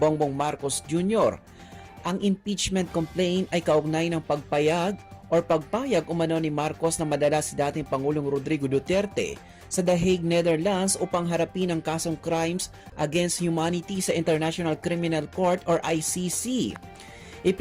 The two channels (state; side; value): identical; both; correlation 1.00